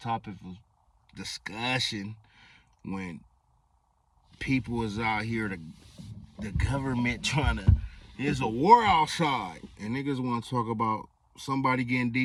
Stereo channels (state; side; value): identical; both; correlation 1.00